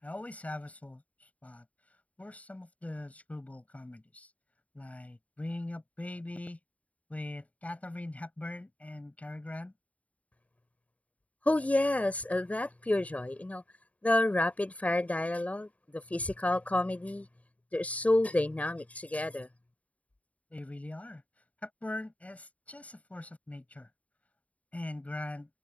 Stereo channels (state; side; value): late; right; 0.068 ms